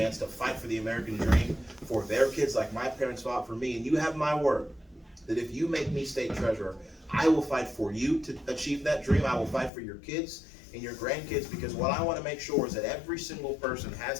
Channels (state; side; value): drops out; right; at 9.7 s